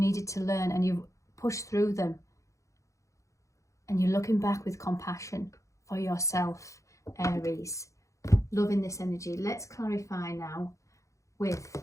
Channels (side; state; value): right; late; 0.15 ms